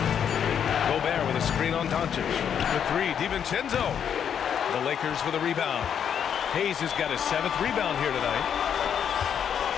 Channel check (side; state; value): right; quieter; 8.3 dB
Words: Gobert with a screen on Doncic. The 3, DiVincenzo. The Lakers with a rebound. Hayes has got his 7th rebound here tonight.